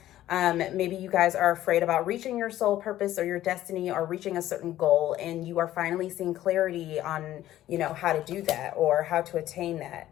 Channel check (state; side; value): quieter; right; 13.6 dB